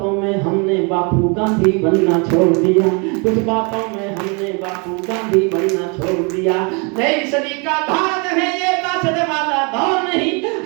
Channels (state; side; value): quieter; left; 32.7 dB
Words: में हमने बापू गांधी बनना छोड़ दिया, कुछ बातों में हमने बापू गांधी बनना छोड़ दिया। नई सदी का भारत है ये बासठ वाला दौर नहीं,